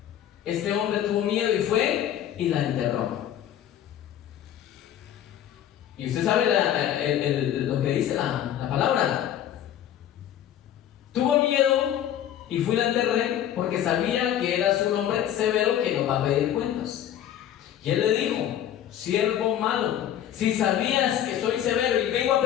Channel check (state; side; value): quieter; right; 10.8 dB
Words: Este hombre tuvo miedo y fue y la enterró. Y usted sabe lo que dice la palabra. Tuvo miedo y fue y la enterré porque sabía que eras un hombre severo que nos va a pedir cuentas. Y él le dijo: siervo malo, si sabías que soy severo y vengo a